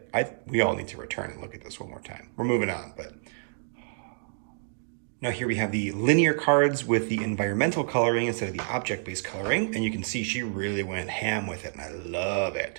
We all need to return and look at this one more time. We're moving on, but now here we have the linear cards with the environmental coloring instead of the object-based coloring. And you can see she really went ham with it, and I love it.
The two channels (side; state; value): left; silent; digital silence